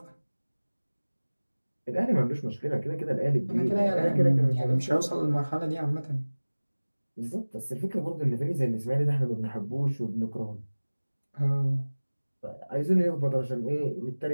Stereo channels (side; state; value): both; inverted; correlation -1.00